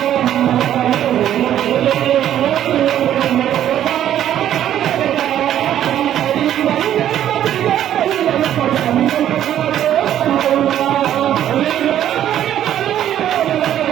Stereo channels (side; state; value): left; quieter; 11.2 dB